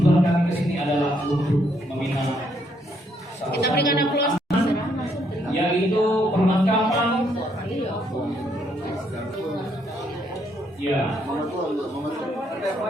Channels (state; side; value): normal; both; correlation 0.72